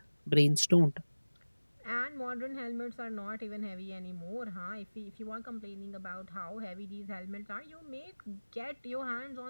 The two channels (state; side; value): inverted; both; correlation -1.00